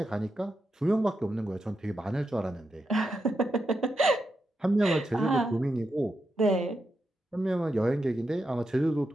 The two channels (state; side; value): normal; both; correlation 0.86